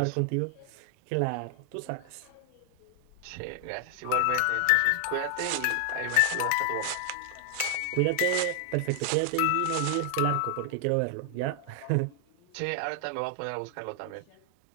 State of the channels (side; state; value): both; different; correlation 0.00